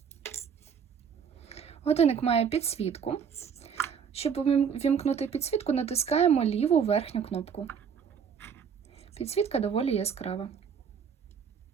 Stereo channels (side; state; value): left; quieter; 7.0 dB